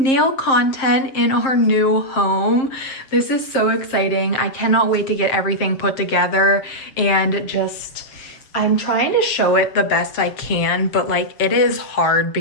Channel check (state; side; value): late; right; 7.5 ms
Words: nail content in our new home. This is so exciting. I cannot wait to get everything put together and just... I'm trying to show it the best I can, but like it is hard